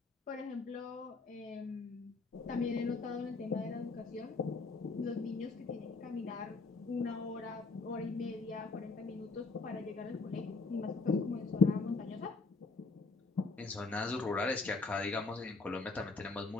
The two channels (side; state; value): right; quieter; 3.9 dB